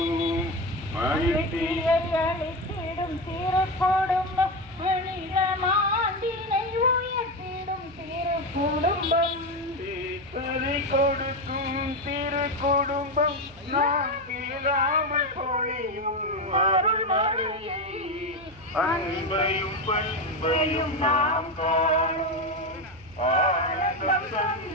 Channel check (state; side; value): noise; right; hum, 23 dB below the sound